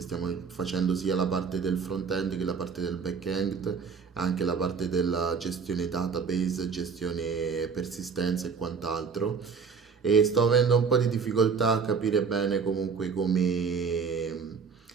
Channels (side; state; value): left; quieter; 5.6 dB